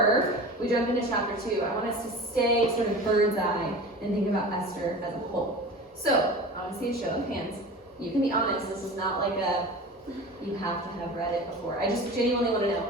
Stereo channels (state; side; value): normal; both; correlation 0.35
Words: we jump into chapter 2, I want us to stay sort of bird's eye and think about Esther as a whole. So I want to see a show of hands. You can be honest. This is not like a you have to have read it before. I just genuinely want to know,